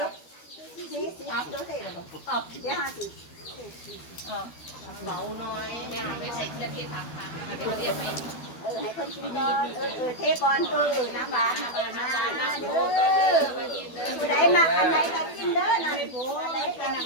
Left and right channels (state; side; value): late; right; 12 ms